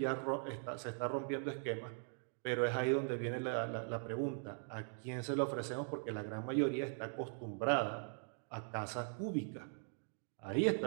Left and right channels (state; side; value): silent; left; 51 dB below the other